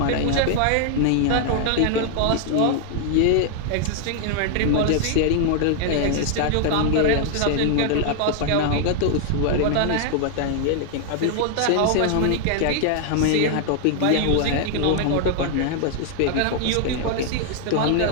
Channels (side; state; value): both; different; correlation 0.00